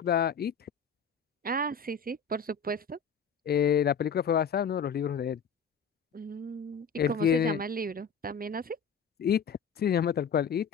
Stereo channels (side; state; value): right; quieter; 5.9 dB